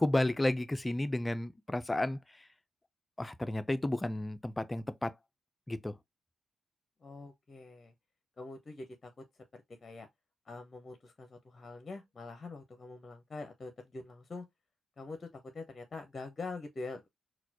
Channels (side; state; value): both; normal; correlation 0.98